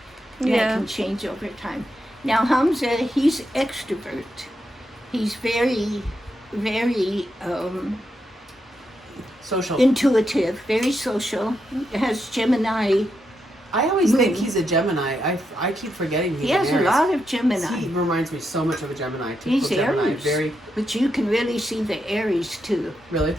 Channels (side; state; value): both; normal; correlation 0.83